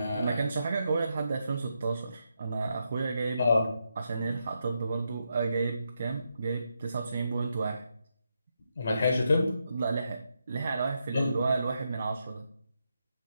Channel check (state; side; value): inverted; both; correlation -0.83